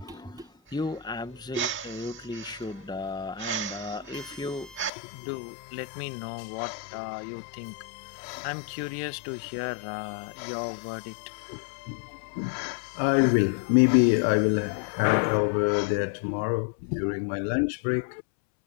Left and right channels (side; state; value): right; drops out; at 4.9 s